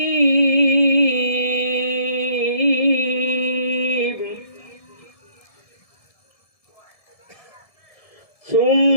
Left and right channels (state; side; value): late; right; 1.7 ms